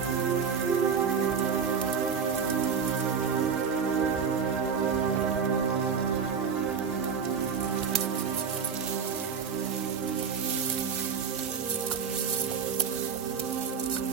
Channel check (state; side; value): quieter; left; 6.4 dB